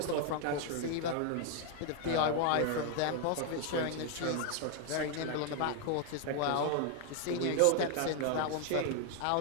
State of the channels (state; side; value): different; both; correlation 0.00